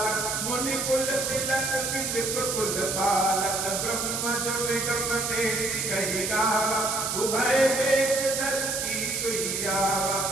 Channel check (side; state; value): right; noise; hiss, 1 dB below the sound